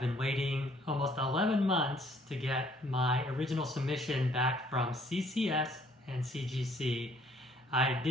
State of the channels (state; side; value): normal; both; correlation 0.62